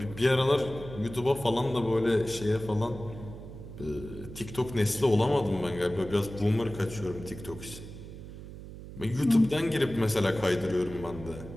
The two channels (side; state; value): right; noise; hum, 13 dB below the sound